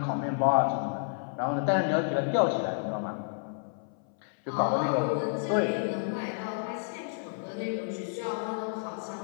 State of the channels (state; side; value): silent; right; 58 dB below the other